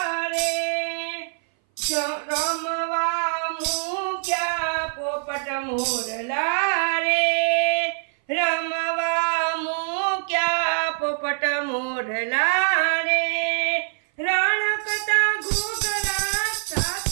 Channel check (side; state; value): left; silent; 59 dB below the other